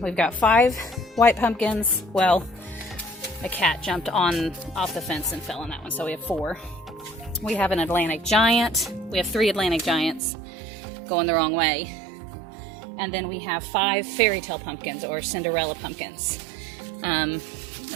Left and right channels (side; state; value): left; drops out; at 10.2 s